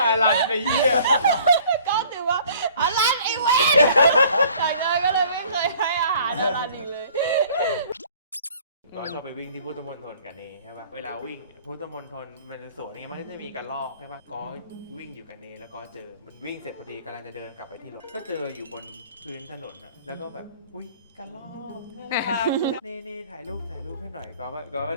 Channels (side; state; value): both; inverted; correlation -0.54